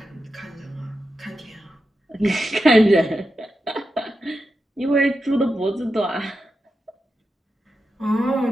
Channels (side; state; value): both; normal; correlation 0.89